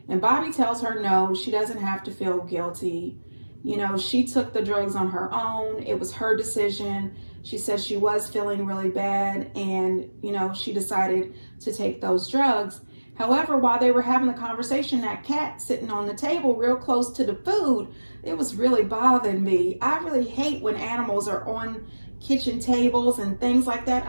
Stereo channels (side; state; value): both; inverted; correlation -1.00